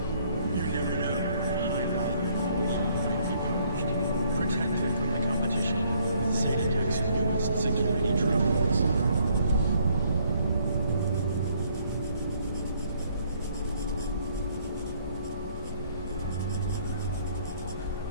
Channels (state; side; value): inverted; both; correlation -0.66